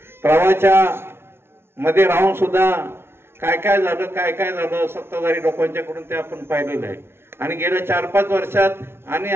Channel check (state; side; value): late; left; 0.12 ms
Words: प्रवाहाच्या मध्ये राहून सुद्धा काय काय झालं सत्ताधारी लोकांच्याकडून ते आपण पाहिलेलं आहे. आणि गेल्या 4-5 वर्षात आणि